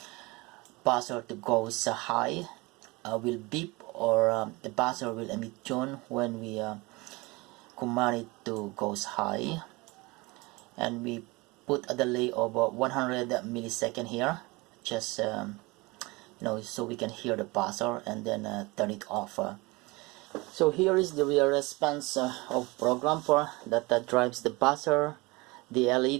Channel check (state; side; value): quieter; left; 24.2 dB